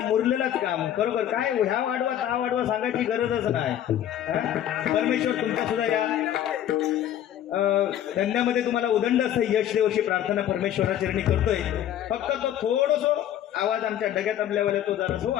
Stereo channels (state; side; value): quieter; right; 11.1 dB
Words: मुरलेलंच काम. बरोबर काय ह्या वाढवा त्या वाढवा सांगायची गरजच नाही. परमेश्वर तुमचा सुद्धा या धंद्यामध्ये तुम्हाला उदंड असं यश देव अशी प्रार्थना परमेश्वराचरणी करतोय. फक्त तो थोडस आवाज आमच्या डग्यात आपल्यावाला तो जरा